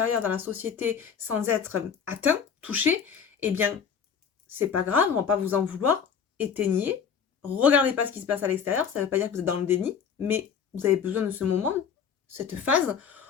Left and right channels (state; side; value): quieter; right; 7.0 dB